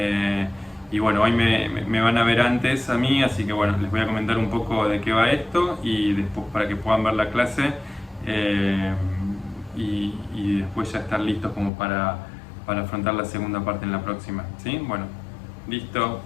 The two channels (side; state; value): right; drops out; at 11.7 s